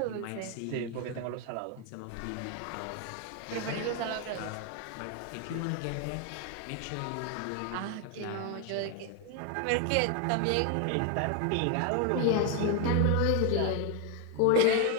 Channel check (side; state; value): both; different; correlation 0.01